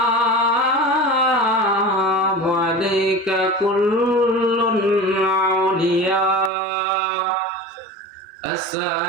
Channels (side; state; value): left; drops out; at 6.5 s